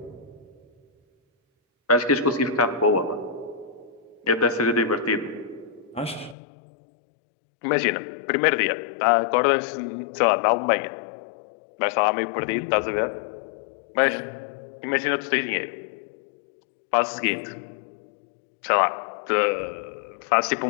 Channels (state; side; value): drops out; right; at 6.4 s